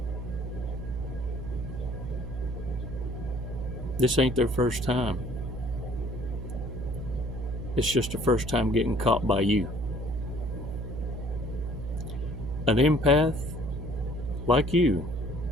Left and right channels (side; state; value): right; noise; hum, 6 dB below the sound